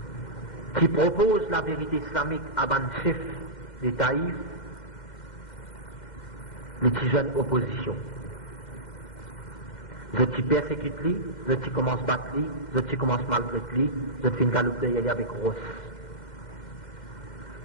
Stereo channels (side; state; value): right; late; 2.1 ms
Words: qui proposent la vérité islamique à ban chef des Taïf, les petits jeunes opposition. Je t'y persécute lui, je t'y commence battre lui, je t'y commence maltraiter lui, je t'y galope y aller avec Ross.